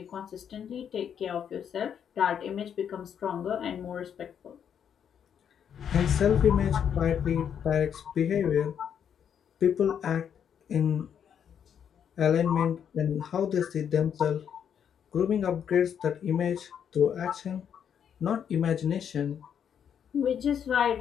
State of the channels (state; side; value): quieter; right; 8.3 dB